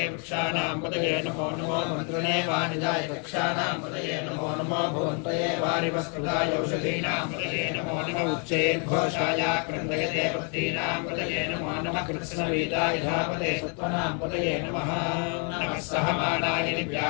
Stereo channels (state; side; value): quieter; right; 38.8 dB